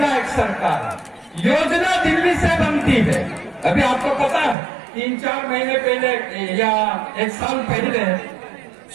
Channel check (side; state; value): left; drops out; at 4.5 s